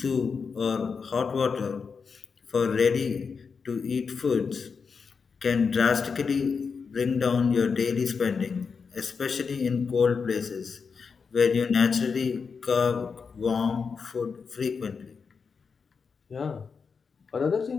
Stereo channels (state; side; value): quieter; right; 5.5 dB